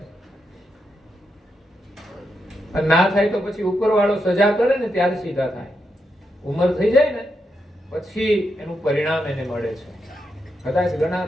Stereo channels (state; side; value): normal; both; correlation 0.83